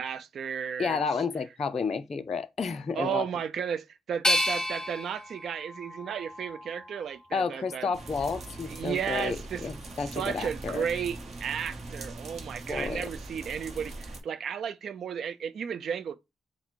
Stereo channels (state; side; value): normal; both; correlation 0.70